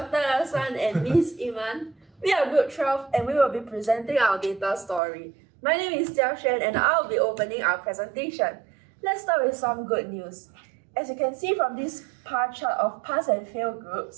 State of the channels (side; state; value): left; drops out; at 5.0 s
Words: Hassan and Ms. Iman. We are Group 12 and we will be presenting our data story. My name is Jia Xuan and I'll be opening our presentation. Let's start with some good news. As you can see from this pie chart of pass and fail